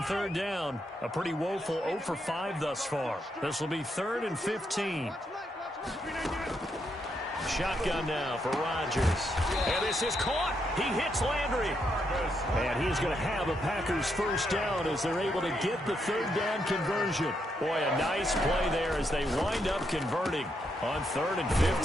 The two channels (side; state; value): both; normal; correlation 0.79